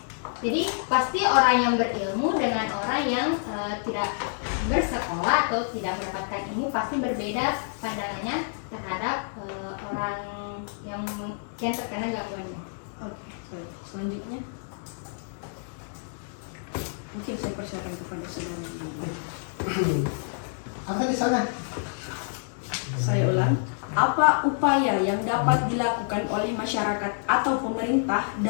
Jadi pasti orang yang berilmu dengan orang yang tidak bersekolah atau tidak mendapatkan ilmu pasti berbeda pandangannya terhadap orang yang terkena gangguannya. Oke, baik. Selanjutnya mungkin saya persilakan kepada saudara. Apa di sana? Saya ulang. Apa upaya yang dapat dilakukan oleh masyarakat atau pemerintah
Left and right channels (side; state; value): right; silent; digital silence